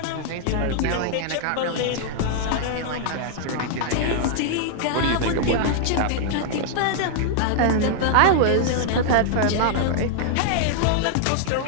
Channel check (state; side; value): different; both; correlation -0.01